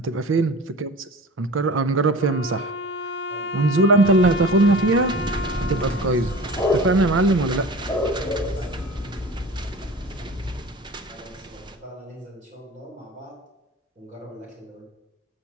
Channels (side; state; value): both; normal; correlation 0.38